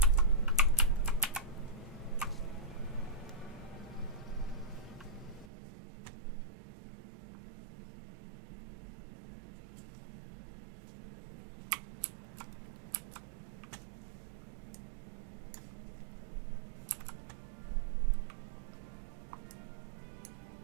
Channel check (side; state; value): left; drops out; at 5.5 s